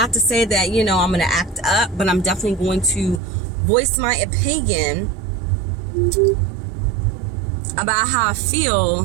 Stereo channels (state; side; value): drops out; left; at 3.2 s